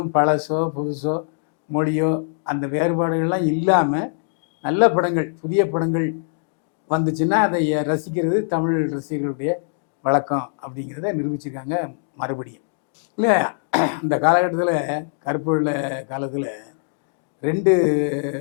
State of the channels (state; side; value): silent; right; digital silence